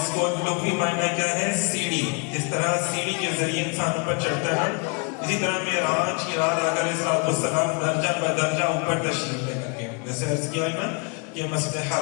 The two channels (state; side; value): quieter; right; 35.5 dB